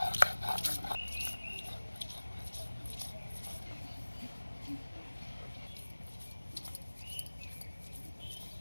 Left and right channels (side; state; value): both; inverted; correlation -1.00